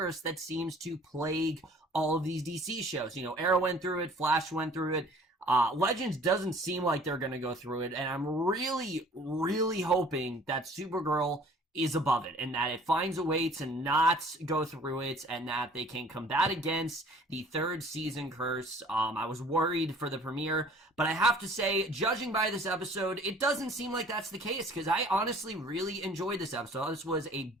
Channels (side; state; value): both; normal; correlation 0.52